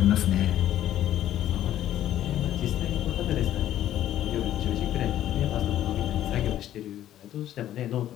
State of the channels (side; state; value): right; quieter; 12.2 dB